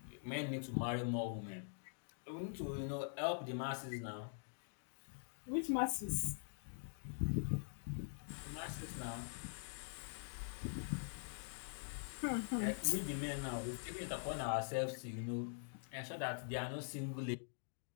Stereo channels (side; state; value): right; silent; digital silence